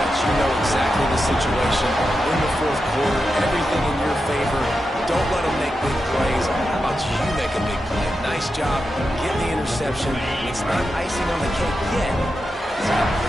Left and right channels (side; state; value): both; normal; correlation 0.89